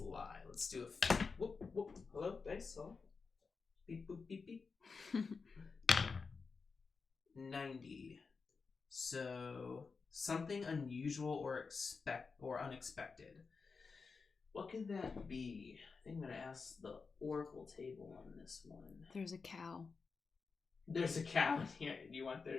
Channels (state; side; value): quieter; right; 4.8 dB